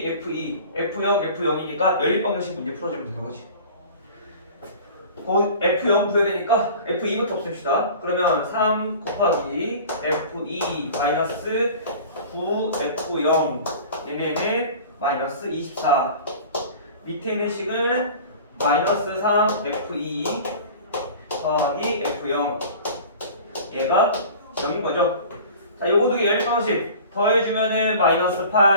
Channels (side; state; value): both; inverted; correlation -0.41